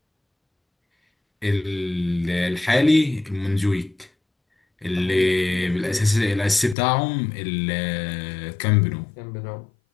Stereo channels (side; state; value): right; drops out; at 6.8 s